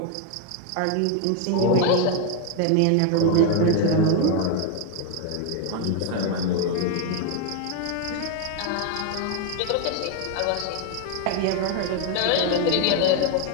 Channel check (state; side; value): different; both; correlation 0.01